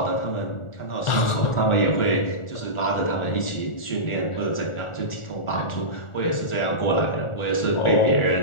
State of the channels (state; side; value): late; right; 1.4 ms